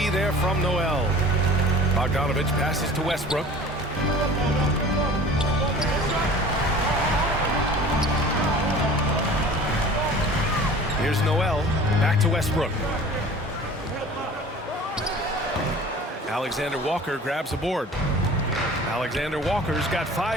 there from Noel. Bogdanovich passes to Westbrook. Here's Noel. Back to Westbrook. Alexander Walker grabs a board. Alexander Walker's got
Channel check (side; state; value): both; normal; correlation 0.43